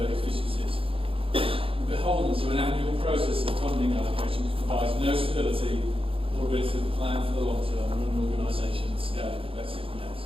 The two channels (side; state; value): left; late; 0.27 ms